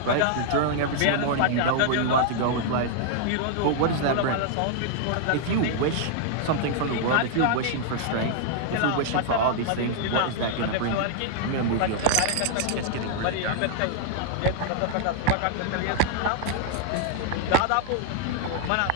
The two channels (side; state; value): both; different; correlation -0.01